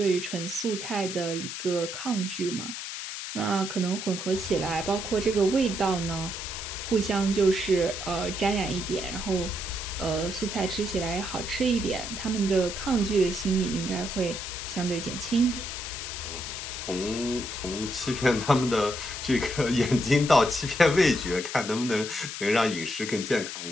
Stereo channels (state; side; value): noise; left; hiss, 7 dB below the sound